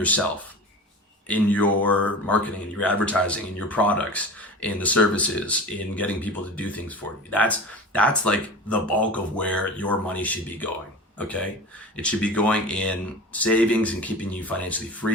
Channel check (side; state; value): both; normal; correlation 0.33